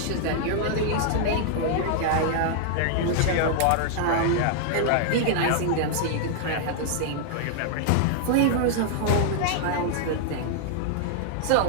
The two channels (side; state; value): both; different; correlation -0.01